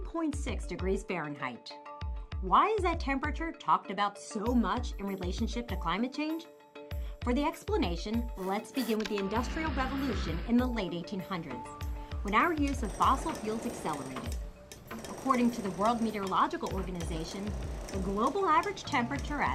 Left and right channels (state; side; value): identical; both; correlation 1.00